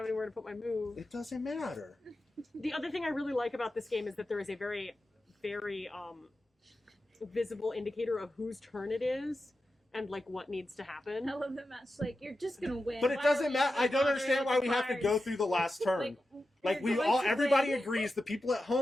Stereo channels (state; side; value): normal; both; correlation 0.91